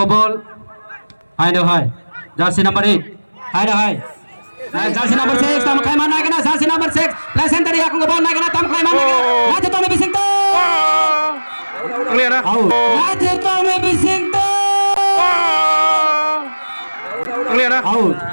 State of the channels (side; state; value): both; inverted; correlation -1.00